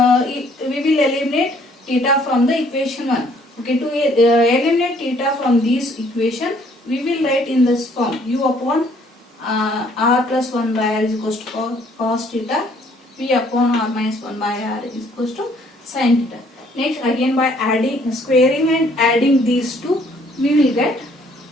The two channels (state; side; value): normal; both; correlation 0.62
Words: will eliminate theta from the equation 1. Okay, to eliminate theta from this equation, we will write in this form U upon R plus 1 by R is equals to cos theta, V upon R minus 1 by R is equals to sin theta. Next, again by adding, squaring and adding these two, we will get